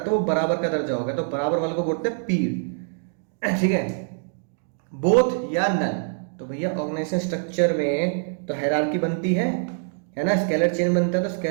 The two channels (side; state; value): left; silent; digital silence